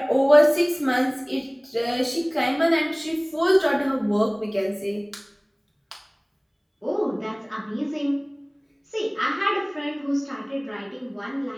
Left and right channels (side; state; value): both; identical; correlation 1.00